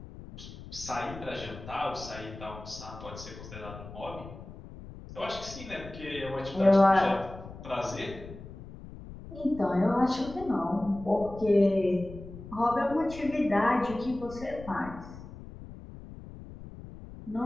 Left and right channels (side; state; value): left; noise; rumble, 14 dB below the sound